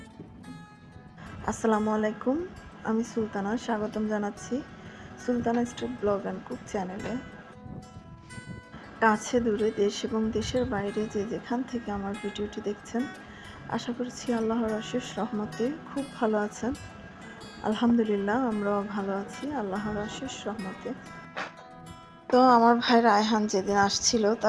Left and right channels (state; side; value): identical; both; correlation 1.00